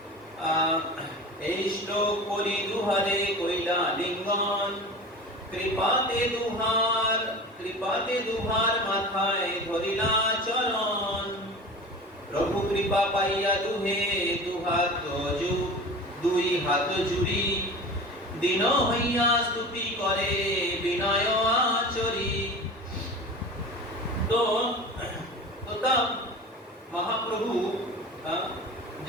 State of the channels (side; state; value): both; normal; correlation 0.34